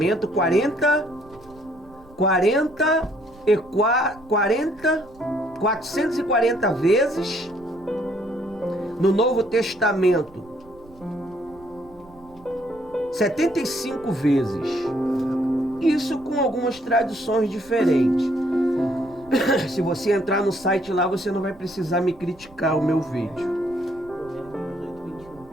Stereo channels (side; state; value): right; noise; rumble, 25 dB below the sound